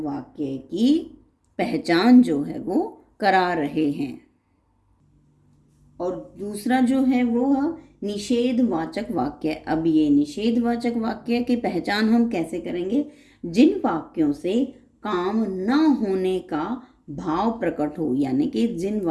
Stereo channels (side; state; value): both; identical; correlation 1.00